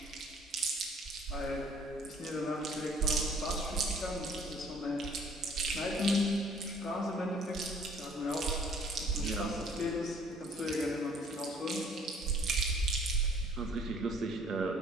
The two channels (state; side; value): normal; both; correlation 0.57